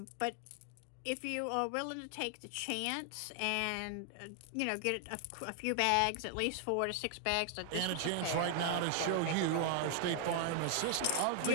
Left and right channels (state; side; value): different; both; correlation 0.00